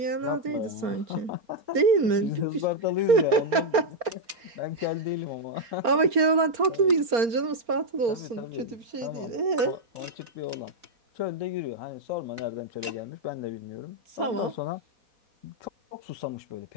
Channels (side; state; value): left; late; 4.3 ms